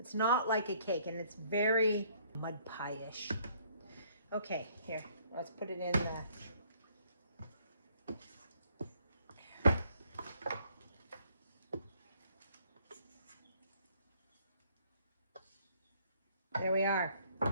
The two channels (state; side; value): inverted; both; correlation -0.63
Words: not like a cake, and it's very mud pie-ish. Okay, here, let's put it in the... There we are.